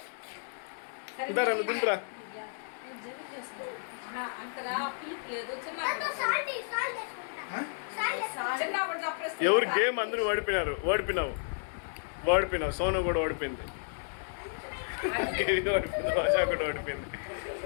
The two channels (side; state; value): right; silent; digital silence